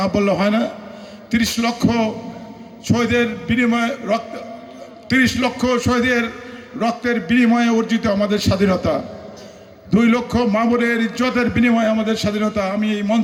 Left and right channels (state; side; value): identical; both; correlation 1.00